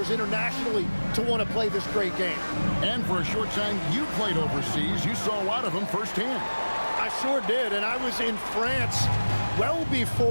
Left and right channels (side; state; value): both; inverted; correlation -1.00